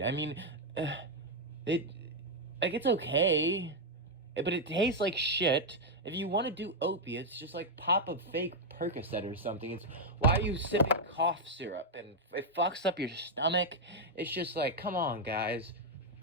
I mean, it's okay, but it tastes like shit. If you want to do opiates, just like pop a fake Percocet or something. It's why are you sipping cough syrup and it fucks up your stomach? It's just like, come on, guys.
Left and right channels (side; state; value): both; normal; correlation 0.00